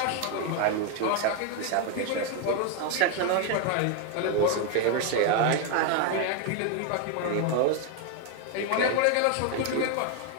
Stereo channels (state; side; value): different; both; correlation 0.01